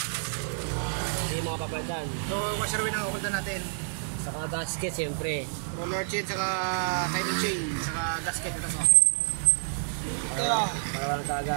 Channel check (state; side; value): silent; left; digital silence